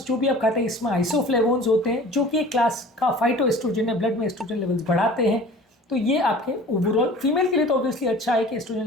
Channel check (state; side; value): normal; both; correlation 0.44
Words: जो भी आप खाते हैं इसमें आइसोफ्लेवोन्स होते हैं जो कि एक क्लास का फाइटो एस्ट्रोजन है, ब्लड में एस्ट्रोजन लेवल्स बढ़ाते हैं। तो ये आपके ओवरऑल फीमेल के लिए तो ऑब्वियसली अच्छा है कि एस्ट्रोजन